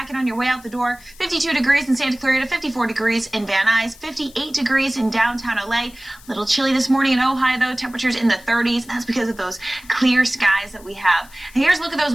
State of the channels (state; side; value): noise; left; hiss, 23 dB below the sound